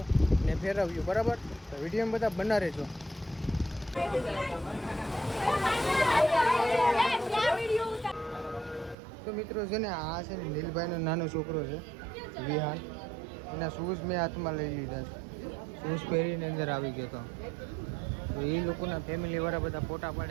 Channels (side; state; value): left; drops out; at 9.0 s